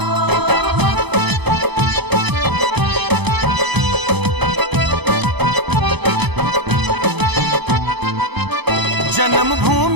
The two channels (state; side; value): late; left; 0.99 ms